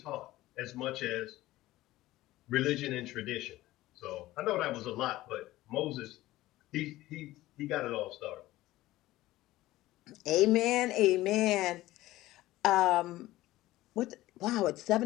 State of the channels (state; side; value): quieter; right; 16.7 dB